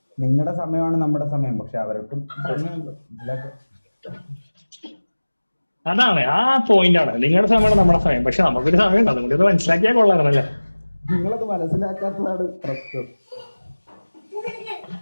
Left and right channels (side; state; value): both; inverted; correlation -1.00